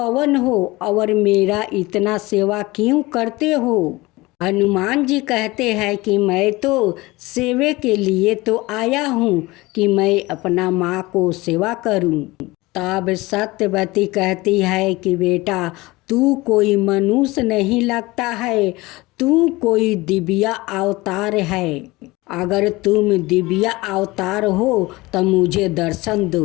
हो और मेरा इतना सेवा क्यों करते हो। हनुमान जी कहते हैं कि मैं तो सेवे के लिए तो आया हूँ कि मैं अपना माँ को सेवा करूँ। तब सत्यवती कहती है कि बेटा, तू कोई मनुष्य नहीं लगता है, तू कोई दिव्य अवतार है। अगर तुम दिव्या अवतार हो तो मुझे दर्शन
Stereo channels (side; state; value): right; quieter; 21.3 dB